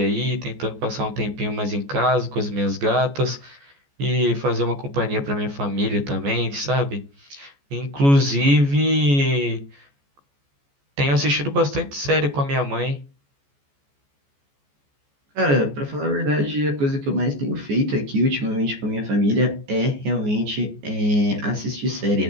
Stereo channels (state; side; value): late; left; 14 ms